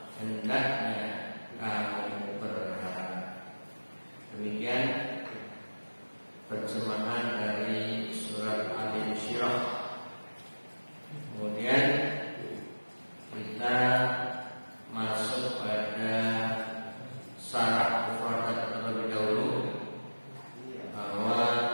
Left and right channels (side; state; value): both; inverted; correlation -1.00